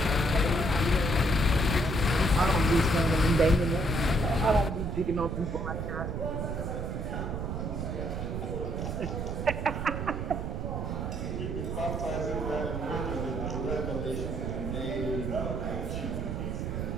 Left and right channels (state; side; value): noise; right; rumble, 3 dB below the sound